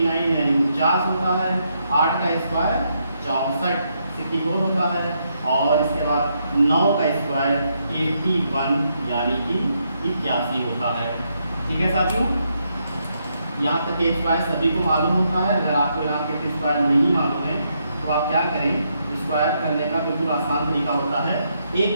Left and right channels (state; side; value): inverted; both; correlation -0.78